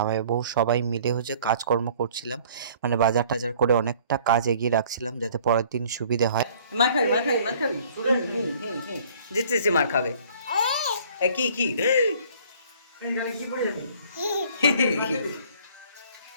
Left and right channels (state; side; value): inverted; both; correlation -0.55